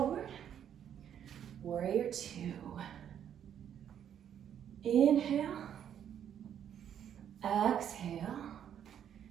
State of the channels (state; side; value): quieter; left; 9.3 dB